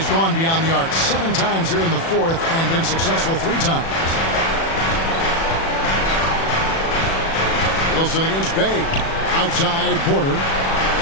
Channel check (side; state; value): right; late; 36 ms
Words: gone beyond the arc 7 times here in the fourth and been successful 3 times. Wilson against Bay. Outside Porter.